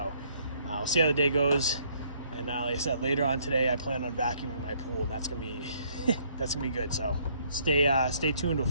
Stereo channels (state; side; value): inverted; both; correlation -0.66